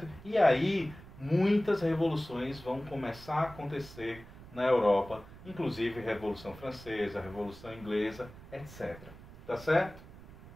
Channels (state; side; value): noise; right; rumble, 18 dB below the sound